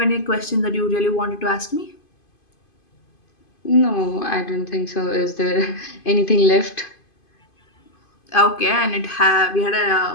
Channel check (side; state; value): right; late; 2.5 ms